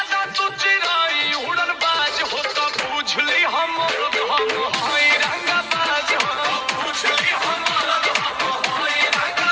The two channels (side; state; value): both; identical; correlation 1.00